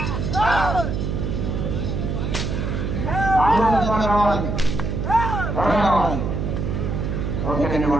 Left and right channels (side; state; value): right; noise; hum, 1 dB below the sound